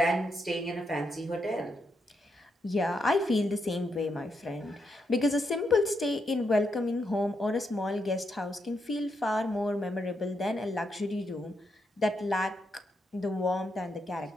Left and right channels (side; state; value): both; normal; correlation 0.81